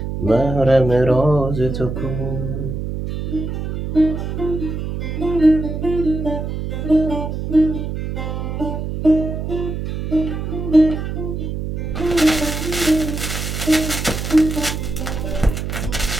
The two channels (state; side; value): noise; right; hum, 4 dB below the sound